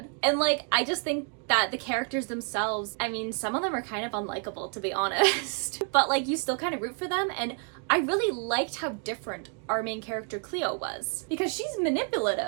And like, I just think that the characters themselves, I mean, some of them are kind of unlikable, to be honest. But like, you still kind of root for them. And I really liked how different our main character Clio was, because she's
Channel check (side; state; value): left; quieter; 38.0 dB